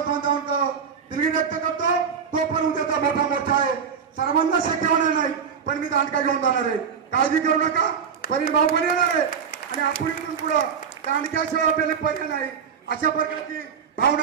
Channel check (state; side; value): quieter; left; 6.9 dB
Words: बांधवांना दिलगिरी व्यक्त करतो तो पण उद्याचा मोठा मोर्चा आहे सर्वांना शक्य होणार नाही पण मी दांडका घेऊन जाणार आहे काळजी करू नका परिण भाऊ पण येणार आहे आणि आपण इथून पुढं दांडक्याशिवाय आपल्याला पर्याय नाही अशा प्रकारची भावना